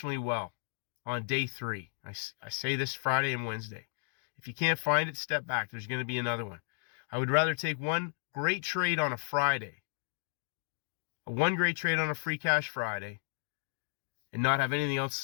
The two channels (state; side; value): silent; right; digital silence